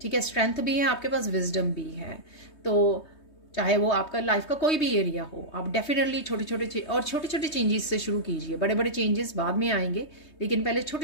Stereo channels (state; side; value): late; right; 3.2 ms